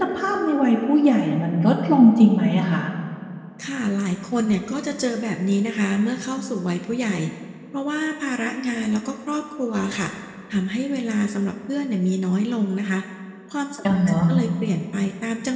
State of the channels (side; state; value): both; identical; correlation 1.00